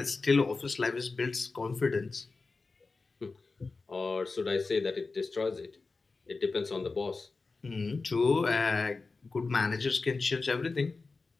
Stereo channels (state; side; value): quieter; right; 4.0 dB